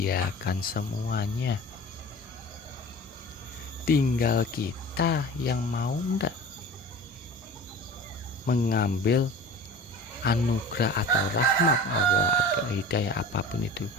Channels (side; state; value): both; normal; correlation 0.38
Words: semuanya. Tinggal kita yang mau enggak mengambil anugerah atau rahmat Allah atau hidayah apapun itu